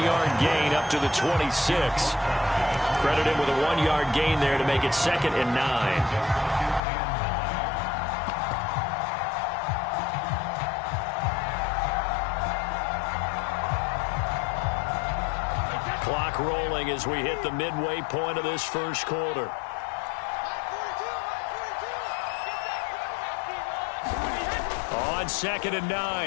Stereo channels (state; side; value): drops out; right; at 6.8 s